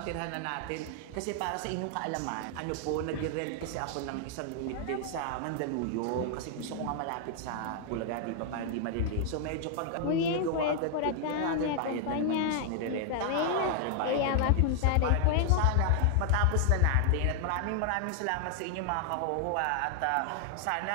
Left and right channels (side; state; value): both; different; correlation 0.00